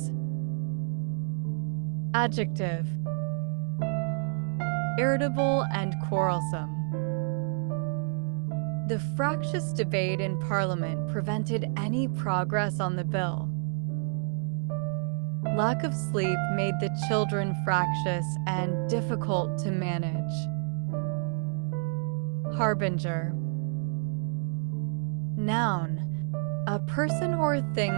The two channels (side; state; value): left; silent; 58 dB below the other